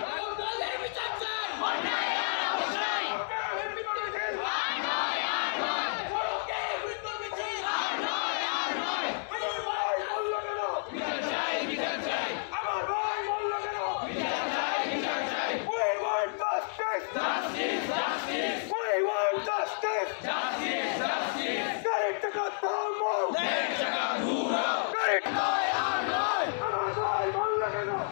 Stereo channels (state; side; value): silent; right; digital silence